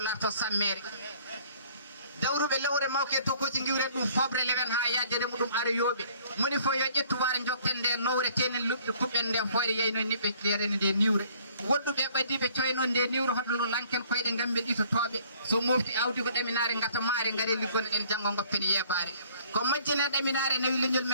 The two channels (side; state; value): both; inverted; correlation -0.57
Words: sammere dawruɓe lewre mawke to koci giwre ɗum fobre leven ha yajere muɗum ara yooɓe moni fo yo ƴettu ware jokten nde nowre tenen luɓɗe kuɓɓen nden foyre yeyno niɓɓe lerene nde niwre woɗɗuɓe ɓaddiɓe coyno nde niwre hoɗolo lanken koyɗe gamɓe ɗitotoɓe so mofti awdi ko ɗeminare gata maare gaare liggono ɗen janggo goppen yebare ko majjine ɗeminare nawi leñol